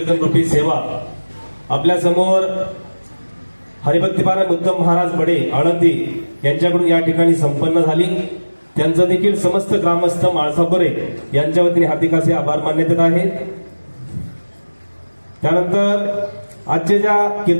सेवा आपल्या समोर हरिभक्तीपारायण उत्तम महाराज बडे आळंदी यांच्याकडून या ठिकाणी संपन्न झाली त्यांचं देखील समस्त ग्रामस्थ माळसापुरे यांच्या वतीने हार्दिक असे आभार मानण्यात येत आहेत. त्यानंतर आजच्या ज्या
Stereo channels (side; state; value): both; inverted; correlation -1.00